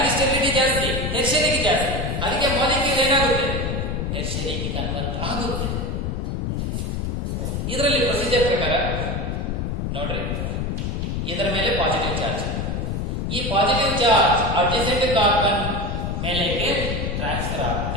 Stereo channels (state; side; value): noise; left; rumble, 2 dB below the sound